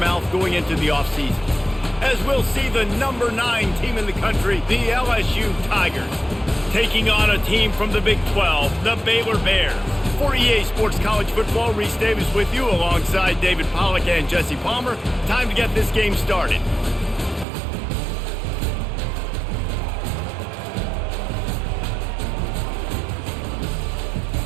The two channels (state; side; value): drops out; left; at 17.4 s